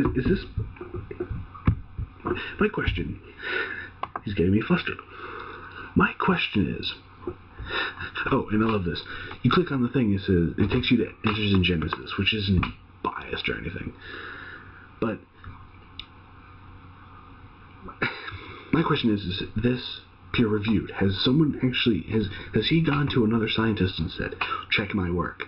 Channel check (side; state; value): both; identical; correlation 1.00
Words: this... My question... He's getting me flustered. My question is... Oh, and I love this. You click on the thing, it takes you to Answers in Genesis, which isn't biased or anything. But... My question is this peer-reviewed? Has someone actually, has he gone to another scientist and said, check my work?